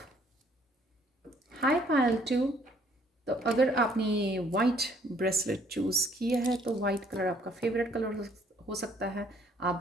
हाय पायल 2। तो अगर आपने वाइट ब्रेसलेट चूज़ किया है तो वाइट कलर आपका फेवरेट कलर हो सकता है। आप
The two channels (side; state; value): both; normal; correlation 0.62